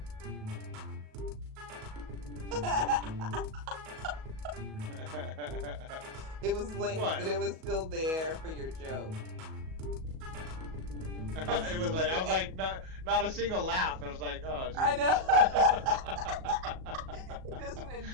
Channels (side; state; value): left; late; 37 ms